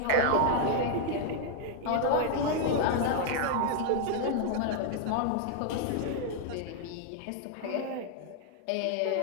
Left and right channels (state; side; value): different; both; correlation -0.01